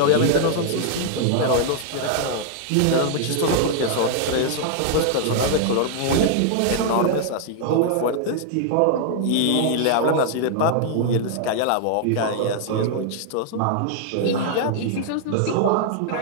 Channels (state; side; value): different; both; correlation -0.01